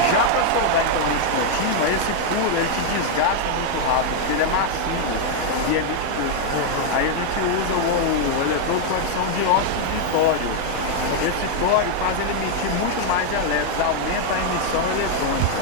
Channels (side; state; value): both; different; correlation 0.00